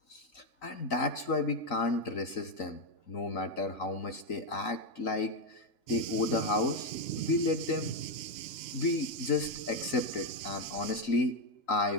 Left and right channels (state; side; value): late; right; 3.9 ms